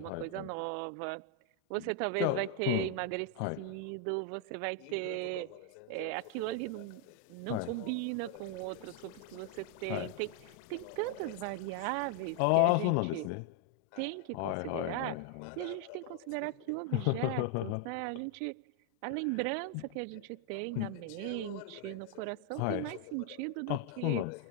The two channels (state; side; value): different; both; correlation 0.00